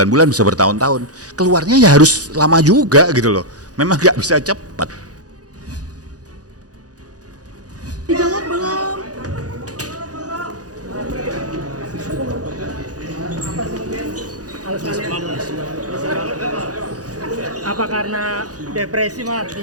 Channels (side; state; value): left; late; 0.67 ms